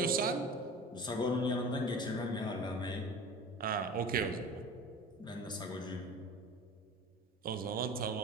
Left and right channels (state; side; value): normal; both; correlation 0.37